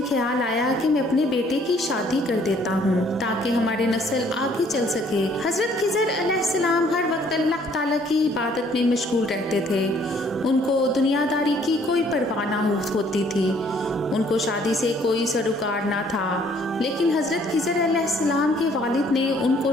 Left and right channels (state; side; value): normal; both; correlation 0.61